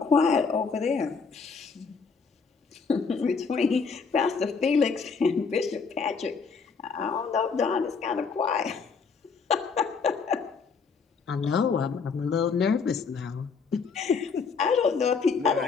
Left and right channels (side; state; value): right; quieter; 5.2 dB